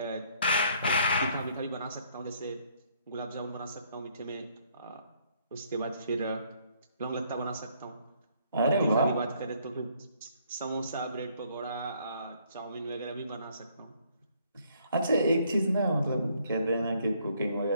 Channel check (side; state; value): both; inverted; correlation -0.66